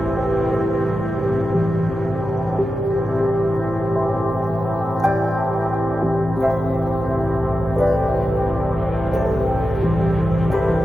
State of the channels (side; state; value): both; normal; correlation 0.91